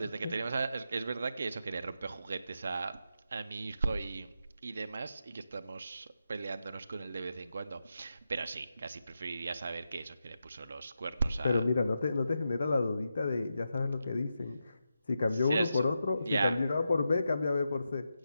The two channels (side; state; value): both; inverted; correlation -0.87